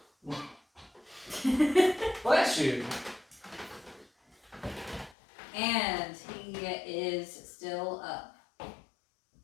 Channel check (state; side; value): drops out; right; at 5.2 s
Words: Bless you. And he is still up.